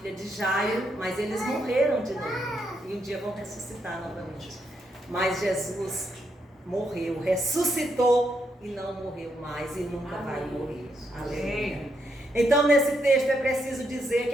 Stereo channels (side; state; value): both; normal; correlation 0.78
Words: de Jairo, mas eles morreram de novo e um dia vão ressuscitar novamente. Mas Jesus morreu, ressuscitou e não morreu mais e nunca vai Amém. morrer. Aleluia. Então, nesse texto é preciso dizer